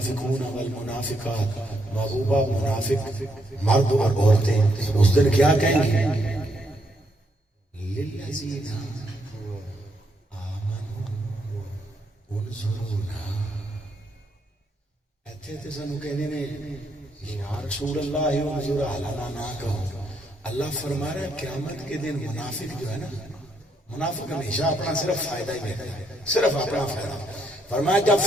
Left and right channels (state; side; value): normal; both; correlation 0.75